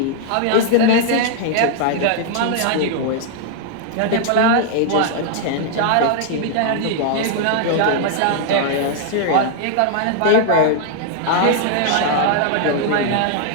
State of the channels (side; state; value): both; different; correlation -0.01